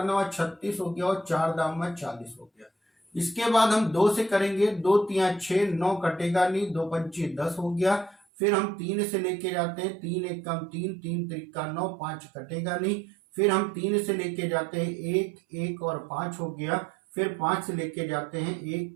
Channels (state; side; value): drops out; left; at 8.2 s